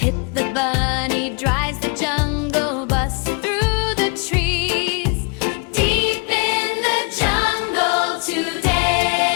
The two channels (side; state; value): right; quieter; 35.2 dB